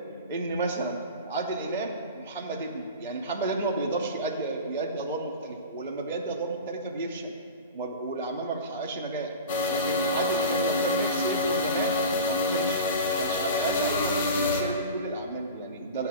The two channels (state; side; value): inverted; both; correlation -0.32